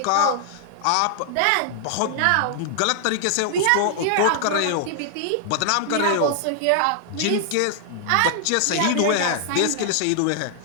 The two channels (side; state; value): both; different; correlation 0.00